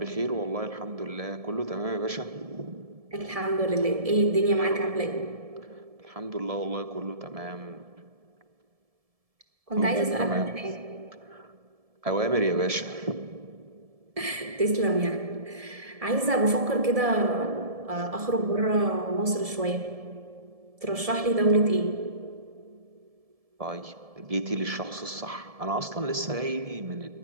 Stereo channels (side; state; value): left; late; 1.7 ms